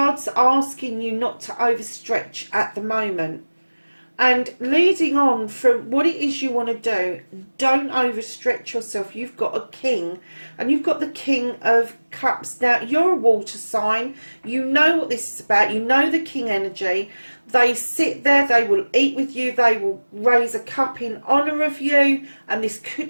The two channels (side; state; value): both; inverted; correlation -1.00